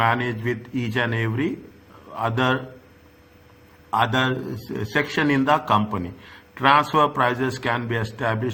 with each and every other section in the company. Transfer prices can be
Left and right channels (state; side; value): identical; both; correlation 1.00